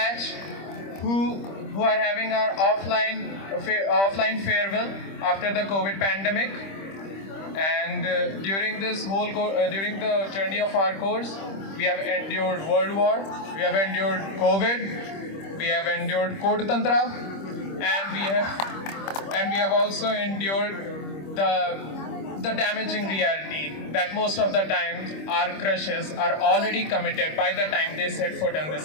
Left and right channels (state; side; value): late; right; 25 ms